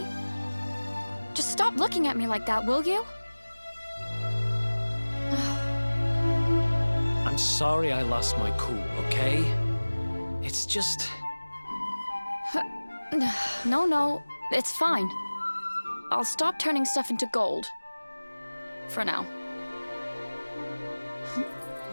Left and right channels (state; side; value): inverted; both; correlation -1.00